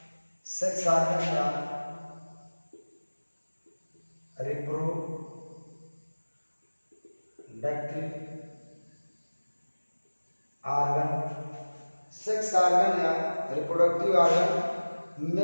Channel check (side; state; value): both; inverted; correlation -1.00